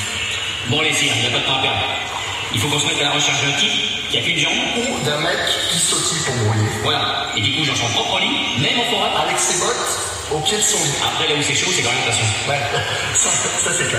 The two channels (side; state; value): both; identical; correlation 1.00